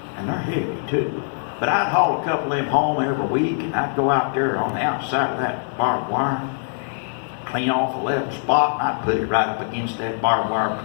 And they're heavy, too. But I'd haul a couple of them home every week, and I'd go out there on the outside of that barbed wire, clean off a level spot, and I'd put it right up against that barbed wire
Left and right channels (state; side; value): silent; right; 58 dB below the other